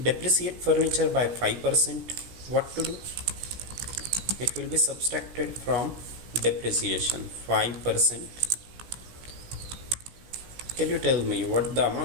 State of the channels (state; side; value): late; left; 16 ms